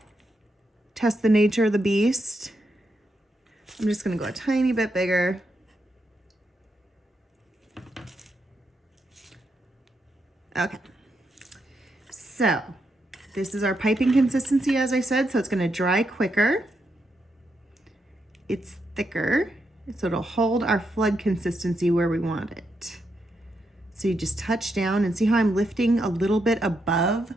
Test the nature of the beast. I'm just gonna go a tiny bit bigger. Okay, so this is our piping consistency, as I said, so it's gonna dry quicker. It's thicker, so it'll hold our flood consistency where we want it. So you just touch down and see how I'm lifting a little bit above,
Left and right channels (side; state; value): both; normal; correlation 0.82